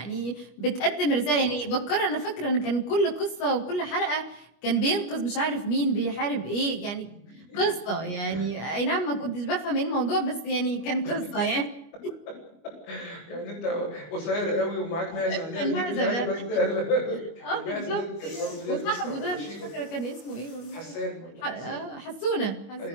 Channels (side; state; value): right; late; 25 ms